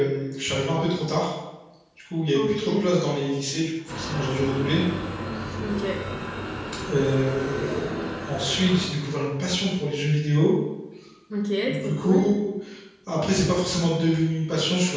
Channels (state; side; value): identical; both; correlation 1.00